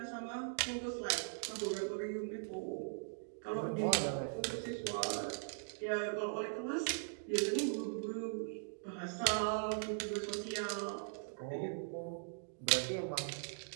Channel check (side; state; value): left; silent; digital silence